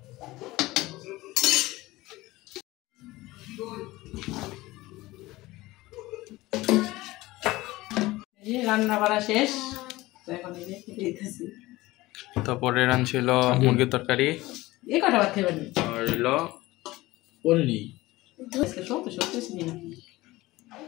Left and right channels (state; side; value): quieter; right; 19.0 dB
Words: রান্না করা শেষ, তো এখন এই যে খেতে দিতেছি। তারপরে রান ছিল মুরগির তরকারি এই কটা ভাত খেয়ে পারবি আর হলো পনির। আজকে সত্যি সত্যি চিনি না